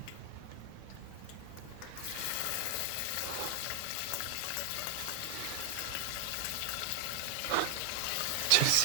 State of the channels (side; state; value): both; different; correlation 0.00